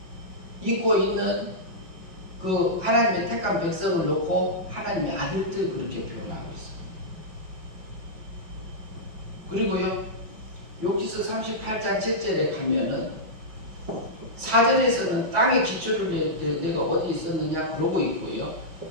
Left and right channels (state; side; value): late; left; 5.3 ms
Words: 입고 있는 그 하나님의 택한 백성을 놓고 하나님의 아들들 그렇게 표현하고 있습니다. 그리고요, 욥기서 38장 7절에 가면은 4절에서는 땅의 기초를 내가 어디 있었느냐 그러고 있고요.